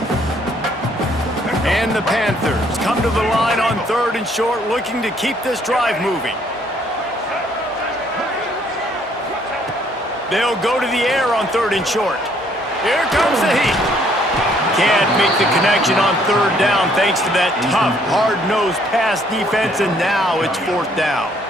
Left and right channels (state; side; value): normal; both; correlation 0.65